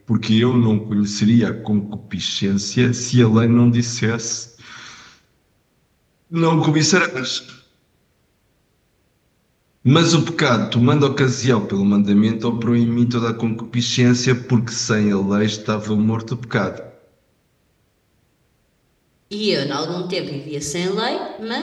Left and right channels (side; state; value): both; identical; correlation 1.00